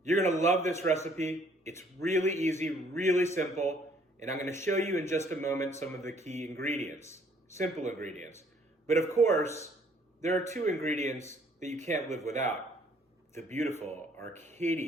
You're gonna love this recipe. It's really easy, really simple, and I'm gonna show you in just a moment some of the key ingredients, simple ingredients. But of course, there are two ingredients that you can't live without. The beautiful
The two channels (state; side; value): normal; both; correlation 0.62